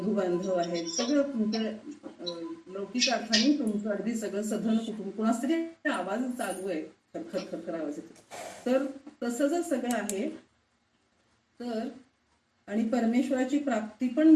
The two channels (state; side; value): identical; both; correlation 1.00